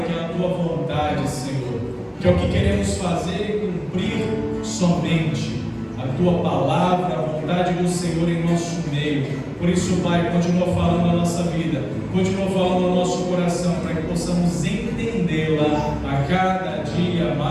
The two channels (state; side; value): identical; both; correlation 1.00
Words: que é a Tua vontade, Senhor, que é o que queremos fazer e cumprir somente a Tua palavra, a vontade do Senhor em nosso meio. Por isso, Pai, continua falando na nossa vida, continua falando no nosso coração, para que possamos entendê-la a cada dia